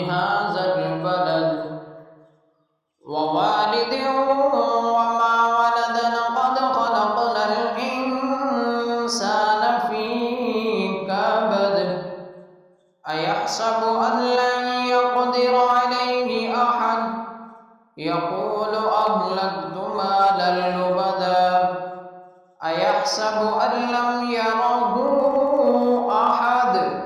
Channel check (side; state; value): both; identical; correlation 1.00